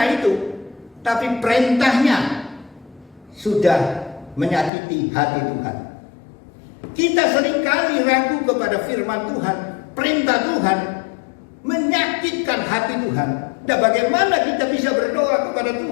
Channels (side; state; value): right; drops out; at 4.7 s